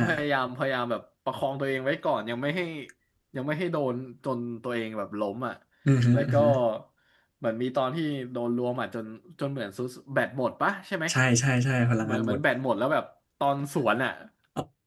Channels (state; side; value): identical; both; correlation 1.00